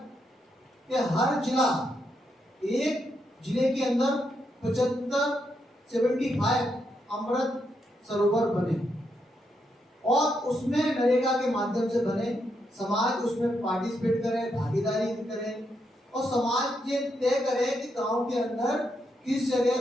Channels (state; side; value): normal; both; correlation 0.80